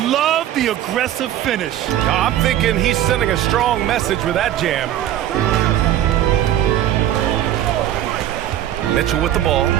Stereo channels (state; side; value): quieter; left; 12.1 dB